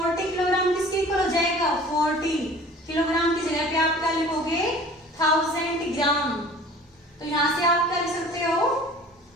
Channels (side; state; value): both; normal; correlation 0.46